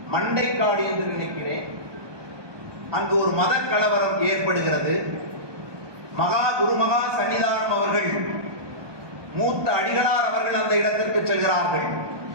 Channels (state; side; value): late; left; 1.2 ms